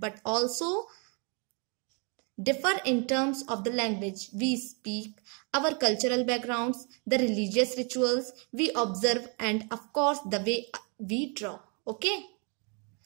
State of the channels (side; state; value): left; quieter; 35.6 dB